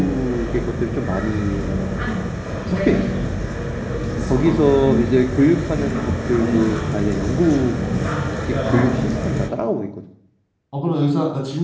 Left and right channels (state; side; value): identical; both; correlation 1.00